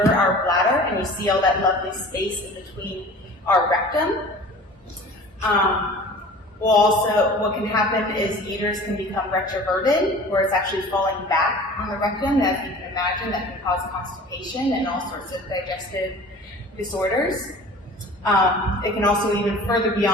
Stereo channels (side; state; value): both; normal; correlation 0.43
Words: our bladder, and you see all that lovely space in between our rectum. What can happen is the uterus can become retroverted, where it's actually falling back on the rectum. As you can imagine, that can cause constipation and all sorts of digestive disorders. It can also even further